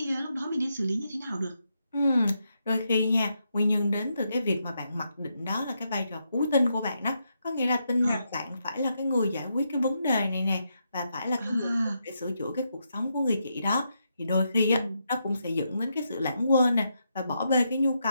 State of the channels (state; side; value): inverted; both; correlation -0.82